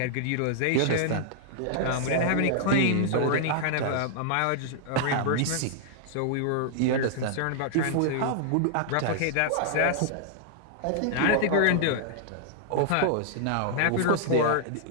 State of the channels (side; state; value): both; different; correlation -0.01